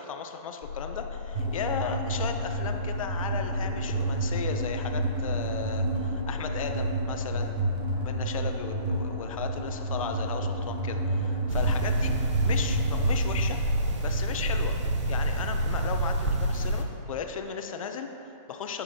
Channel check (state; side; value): inverted; both; correlation -0.51